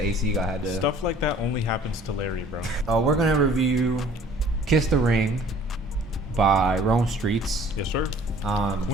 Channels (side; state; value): both; normal; correlation 0.52